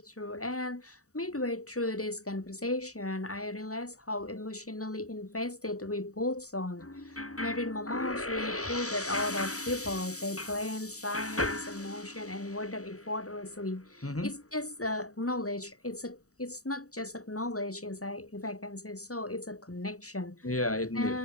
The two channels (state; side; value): late; right; 0.65 ms